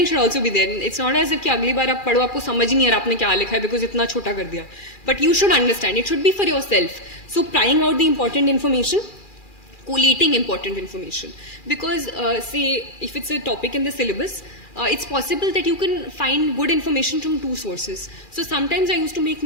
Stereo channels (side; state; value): right; late; 2.4 ms